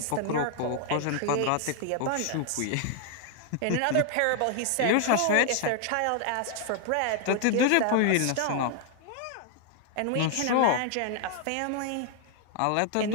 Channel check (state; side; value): different; both; correlation 0.00